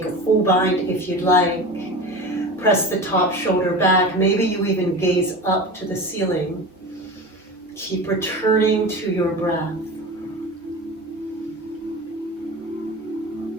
a full bind if you'd like. Press the top shoulder back. Maybe you even gaze up to the ceiling. Keep returning to your breath.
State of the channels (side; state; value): both; normal; correlation 0.30